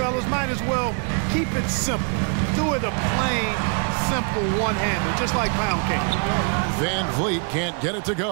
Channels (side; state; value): left; quieter; 39.4 dB